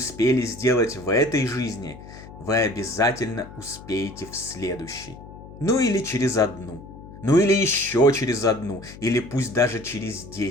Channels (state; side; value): noise; left; hum, 16 dB below the sound